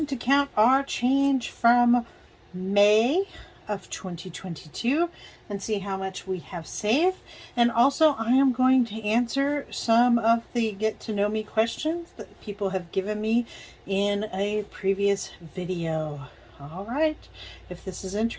to count our change from May of 2022 and see how much we have saved. And also I am going to answer some of the get to know me questions that people have given me in a previous video. All right, if this is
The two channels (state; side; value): identical; both; correlation 1.00